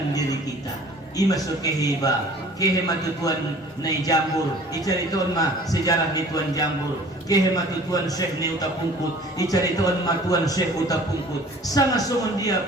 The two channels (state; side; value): normal; both; correlation 0.49